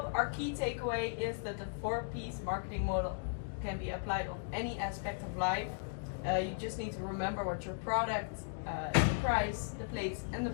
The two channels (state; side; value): silent; right; digital silence